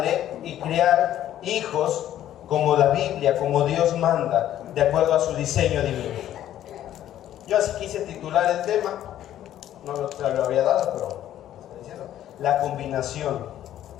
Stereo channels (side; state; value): right; quieter; 12.0 dB